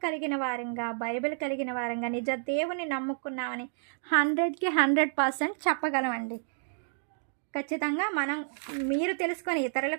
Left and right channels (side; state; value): left; silent; digital silence